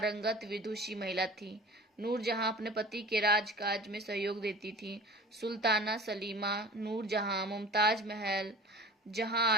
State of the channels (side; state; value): both; normal; correlation 0.41